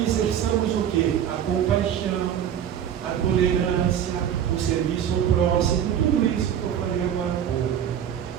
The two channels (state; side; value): quieter; left; 9.5 dB